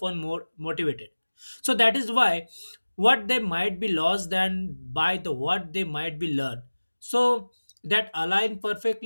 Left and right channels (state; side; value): inverted; both; correlation -1.00